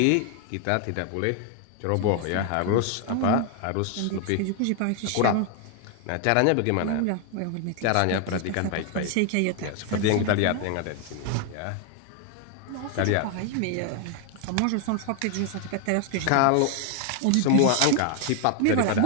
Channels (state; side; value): different; both; correlation 0.01